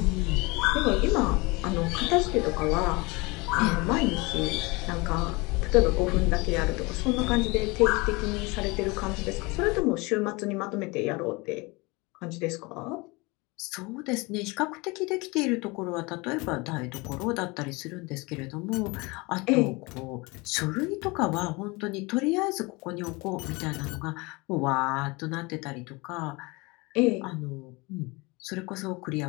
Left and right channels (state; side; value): quieter; right; 25.5 dB